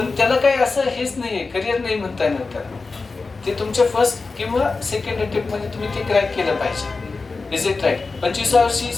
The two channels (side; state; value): right; quieter; 4.0 dB